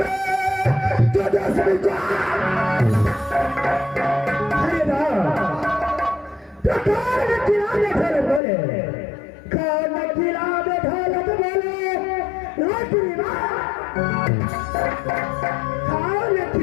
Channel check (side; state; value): right; drops out; at 8.4 s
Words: तो दसवीं को अरे ना प्रकार में किराने घर बोले कौन किराने ढोलक बोले रोटी माँ कौन